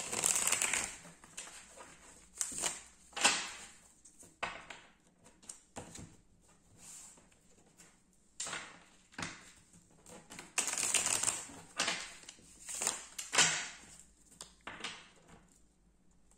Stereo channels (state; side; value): identical; both; correlation 1.00